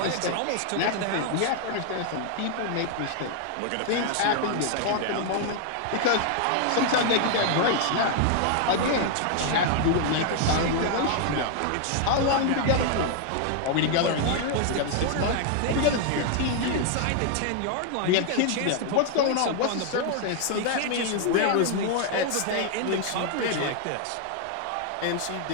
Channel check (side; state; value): both; different; correlation 0.00